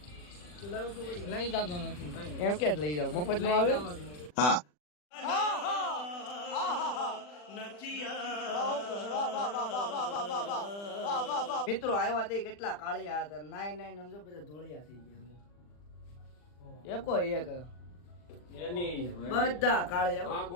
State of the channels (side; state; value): right; late; 40 ms